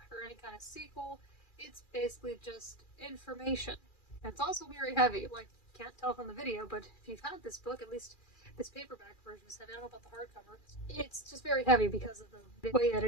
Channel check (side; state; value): right; late; 2.4 ms